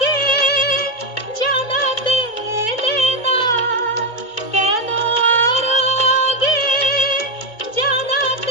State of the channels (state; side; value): late; right; 2.2 ms